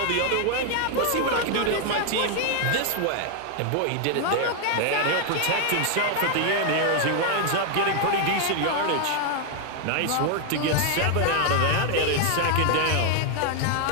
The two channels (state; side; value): different; both; correlation 0.00